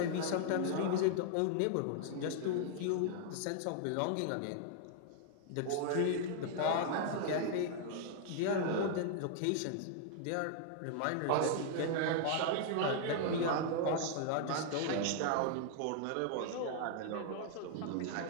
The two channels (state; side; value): different; both; correlation -0.01